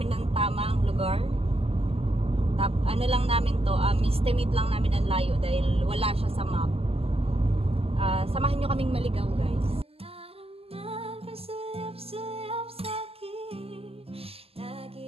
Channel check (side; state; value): left; late; 0.29 ms